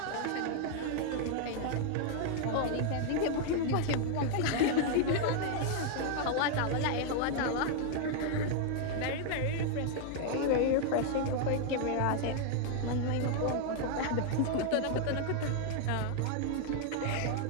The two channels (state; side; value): different; both; correlation 0.00